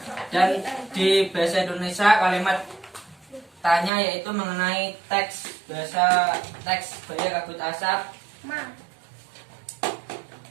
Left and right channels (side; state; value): left; drops out; at 3.9 s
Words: Dan di bahasa Indonesia kalimat faktanya yaitu mengenai teks bahasa teks Baya Kabut Asap, Ma.